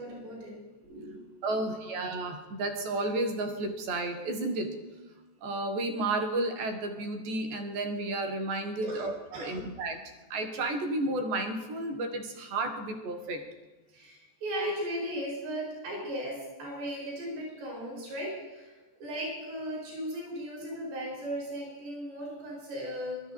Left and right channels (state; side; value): late; left; 14 ms